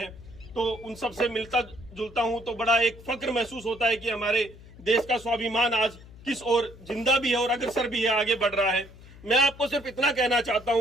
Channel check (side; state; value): left; noise; hum, 20 dB below the sound